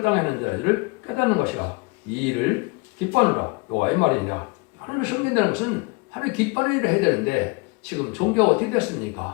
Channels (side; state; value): right; quieter; 27.4 dB